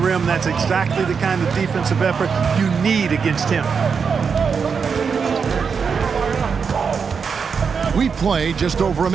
That's exactly the kind of defensive effort you need against him. We play just over a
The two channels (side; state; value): left; quieter; 6.0 dB